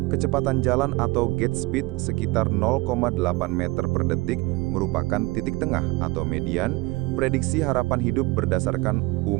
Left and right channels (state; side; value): quieter; left; 22.3 dB